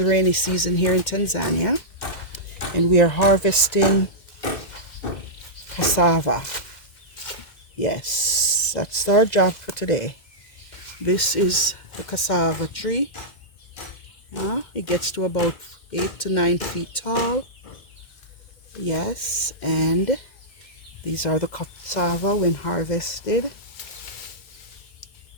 rainy season here in Tanzania. And we are harvesting cassava. Yes, that's our job for today. This is the cassava tree. It gets to about 8 to 9 feet tall. Yes, and these are the cassava when harvested.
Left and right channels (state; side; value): late; right; 2.1 ms